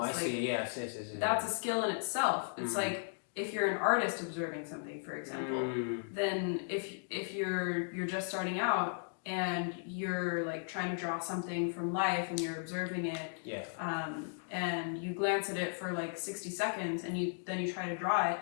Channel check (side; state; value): right; silent; digital silence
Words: see. Yes. That's a skill in itself. It's like if you're an artist observing something, for example, then if you're just starting out and you're like trying to draw something from life and you're observing it, and you glance at it for like 60 seconds and then you try to draw it,